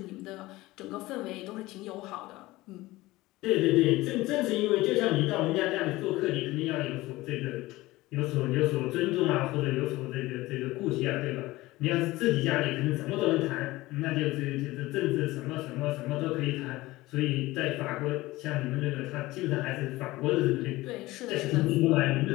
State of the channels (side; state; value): right; quieter; 19.0 dB